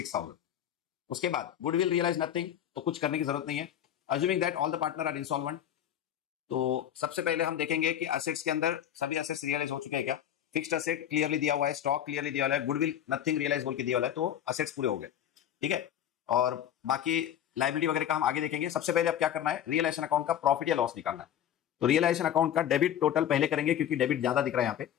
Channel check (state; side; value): quieter; right; 10.3 dB